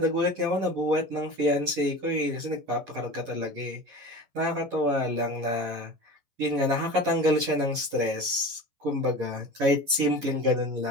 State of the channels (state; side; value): late; left; 11 ms